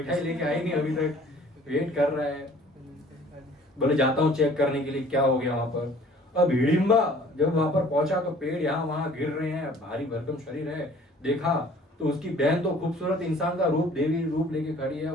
लेके आई नहीं अभी तक, वेट कर रहा है। बोले जाता हूँ चेक करने के लिए क्या हो गया वहां पर। अब हिडिंबा जब वहां पर पहुंचा तो पेड़ यहाँ वहां गिर रहे हैं, भारी भरकम शरीर है। देखा तो उसकी बहन तो खूबसूरत इंसान का रूप, देवी रूप लेके खड़ी है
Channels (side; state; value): both; normal; correlation 0.53